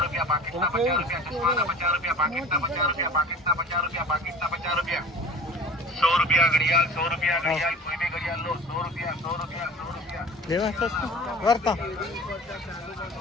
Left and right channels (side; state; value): both; normal; correlation 0.40